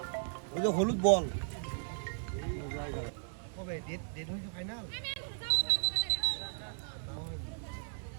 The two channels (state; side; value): silent; left; 54 dB below the other